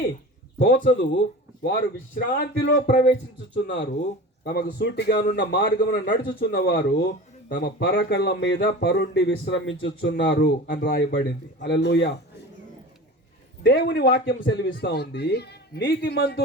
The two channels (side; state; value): both; normal; correlation 0.35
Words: తోచదు, వారు విశ్రాంతిలో ప్రవేశించుచున్నారు, తమకు సూటిగానున్న మార్గమున నడుచుచున్న వారు తమ పరకళ్ళ మీద పరుండి విశ్రమించుచున్నారు అని రాయబడింది. హల్లెలూయా. దేవుని వాక్యం సెలవిస్తా ఉంది,